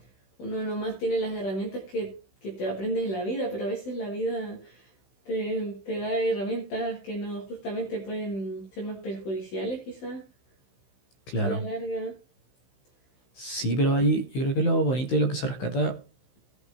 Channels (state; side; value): late; right; 15 ms